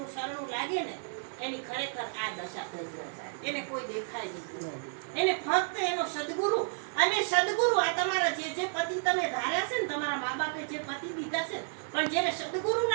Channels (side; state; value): left; silent; digital silence